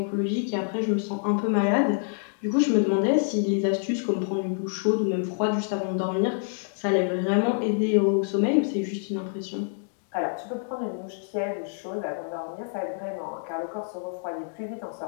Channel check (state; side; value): silent; right; digital silence